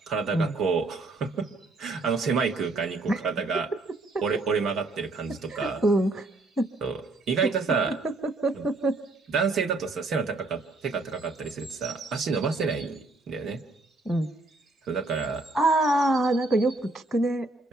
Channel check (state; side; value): quieter; left; 3.0 dB